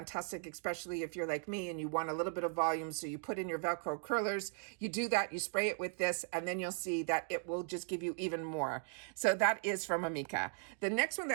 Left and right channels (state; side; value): silent; left; 53 dB below the other